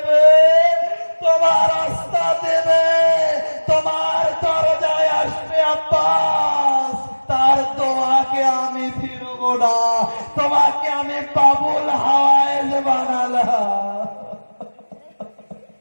তোমার রাস্তা দেবে, তোমার দরজায় আসবে আব্বাস, তার দোয়াকে আমি ফিরবো না, তোমাকে আমি বাবুল হাওয়ায়েস বানালাম।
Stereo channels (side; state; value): both; inverted; correlation -1.00